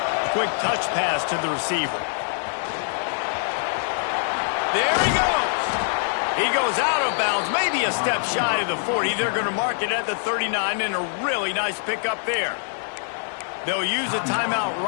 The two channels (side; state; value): right; silent; digital silence